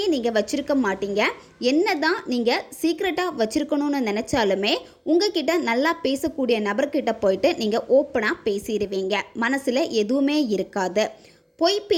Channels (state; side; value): identical; both; correlation 1.00